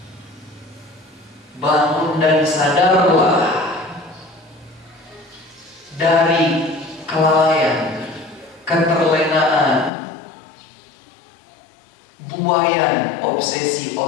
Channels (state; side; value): drops out; right; at 9.9 s